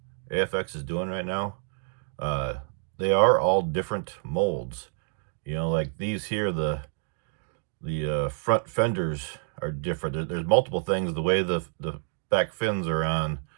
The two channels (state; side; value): silent; left; 58 dB below the other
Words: AFX is doing right now, they are all different molds. You know, like these here, the front fenders are different. There's multiple things. The way the back fins are on,